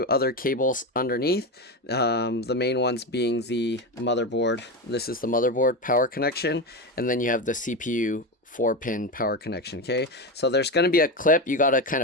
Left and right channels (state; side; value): normal; both; correlation 0.17